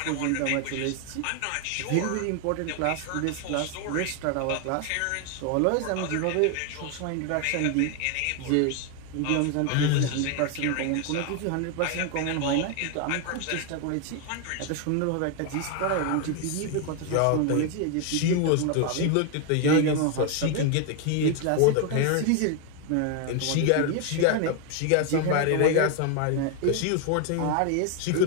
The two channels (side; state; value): both; different; correlation 0.01